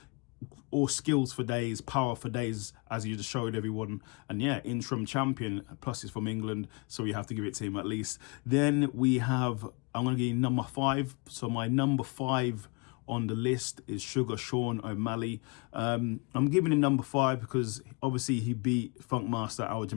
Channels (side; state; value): right; quieter; 30.7 dB